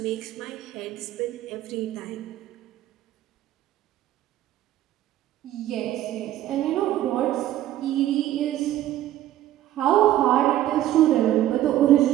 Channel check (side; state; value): left; quieter; 13.3 dB